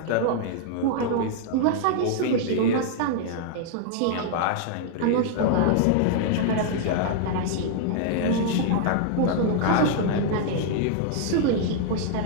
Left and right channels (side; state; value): both; different; correlation 0.00